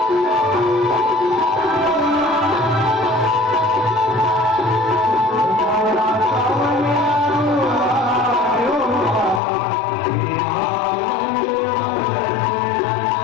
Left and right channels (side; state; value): right; drops out; at 9.4 s